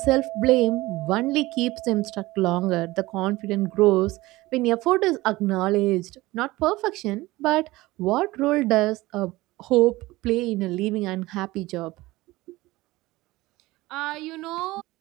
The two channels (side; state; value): left; quieter; 19.4 dB